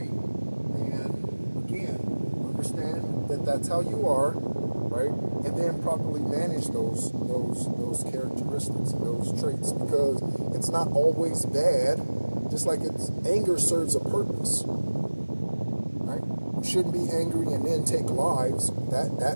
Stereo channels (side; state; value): both; inverted; correlation -1.00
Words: And again, understand that that's how you are, right? And then properly manage those characteristics and those traits, because it's not always bad. Just like anger serves a purpose, right? You shouldn't be angry and then take lives.